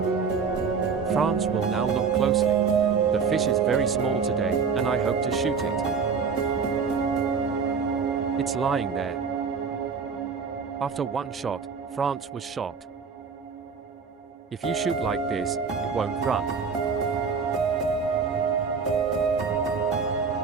France will now look closely. The fish is very small today, and I hope to shoot it. It's lying there. After one shot, France was shot. If you shoot like this, it won't run.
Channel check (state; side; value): quieter; left; 5.6 dB